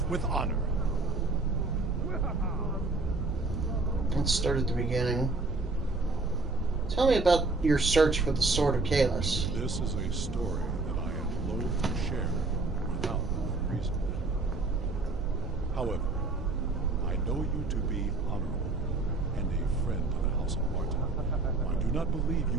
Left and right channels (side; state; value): left; quieter; 3.4 dB